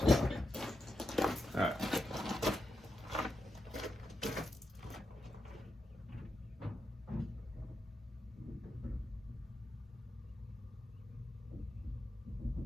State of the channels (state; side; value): normal; both; correlation 0.86